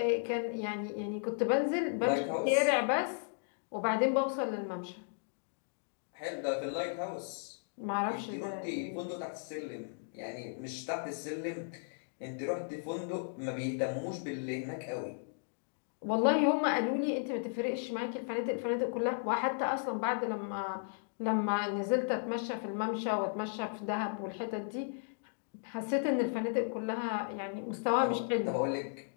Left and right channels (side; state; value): right; silent; digital silence